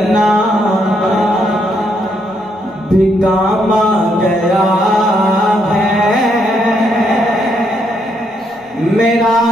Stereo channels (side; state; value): both; normal; correlation 0.75